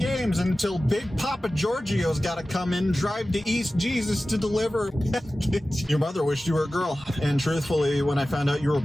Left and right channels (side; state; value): both; normal; correlation 0.96